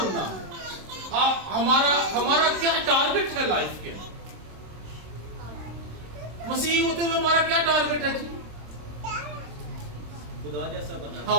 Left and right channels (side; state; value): left; late; 26 ms